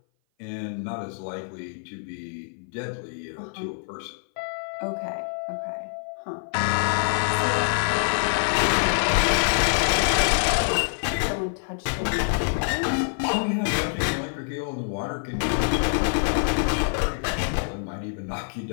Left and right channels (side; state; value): right; silent; 57 dB below the other